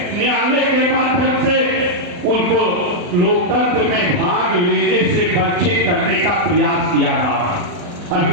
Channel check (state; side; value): late; left; 40 ms